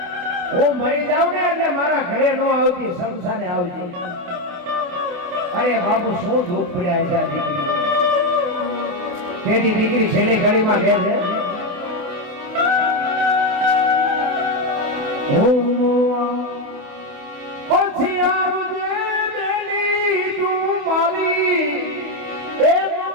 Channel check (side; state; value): left; late; 28 ms